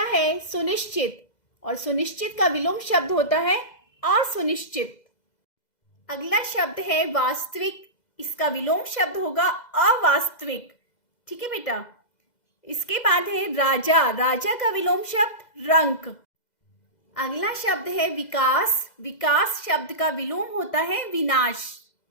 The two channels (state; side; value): late; right; 2.0 ms